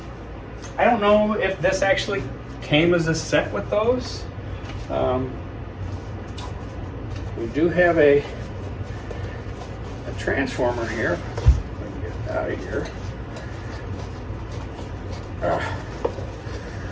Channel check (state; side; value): identical; both; correlation 1.00